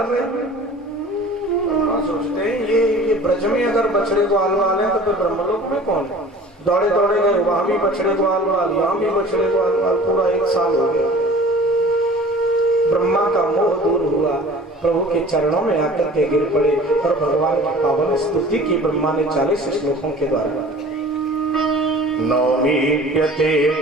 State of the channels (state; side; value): normal; both; correlation 0.45